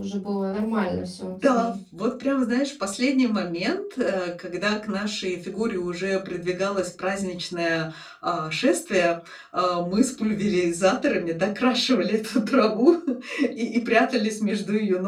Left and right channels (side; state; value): both; identical; correlation 1.00